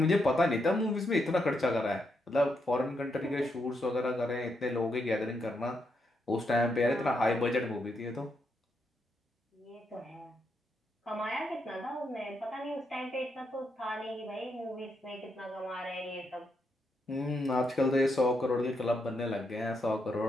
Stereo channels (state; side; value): normal; both; correlation 0.80